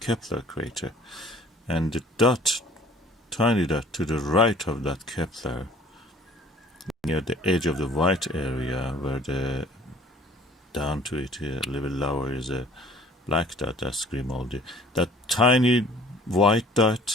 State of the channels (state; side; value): normal; both; correlation 0.52